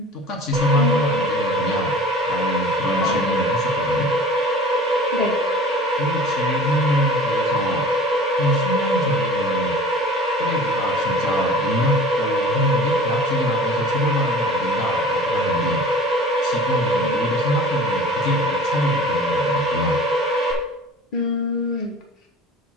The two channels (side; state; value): both; normal; correlation 0.43